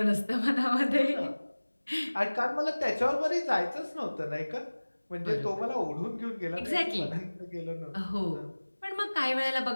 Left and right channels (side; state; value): both; inverted; correlation -1.00